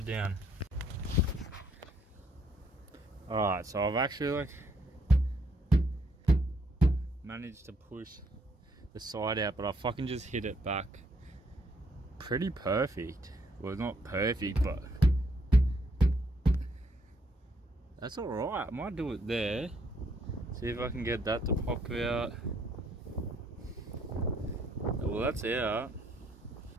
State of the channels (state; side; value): normal; both; correlation 0.69